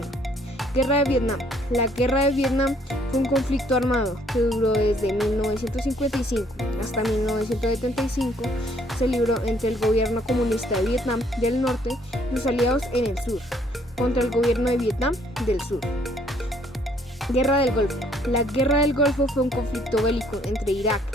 Guerra de Vietnam. La guerra de Vietnam fue un conflicto armado que duró desde 1955 hasta 1975. Se libró entre el gobierno comunista de Vietnam del Norte y sus aliados en el sur, contra el gobierno de Vietnam del Sur. Guerra del Golfo. La Guerra del Golfo fue un conflicto bélico entre Irak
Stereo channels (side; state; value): both; normal; correlation 0.64